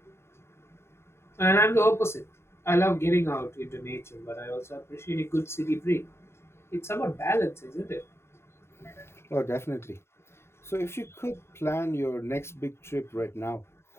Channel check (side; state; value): right; late; 0.12 ms